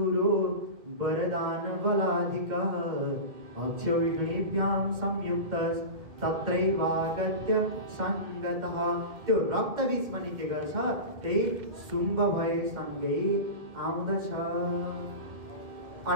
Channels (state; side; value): late; left; 2.1 ms